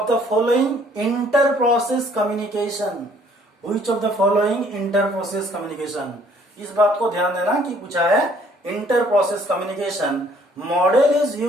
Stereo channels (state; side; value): normal; both; correlation 0.61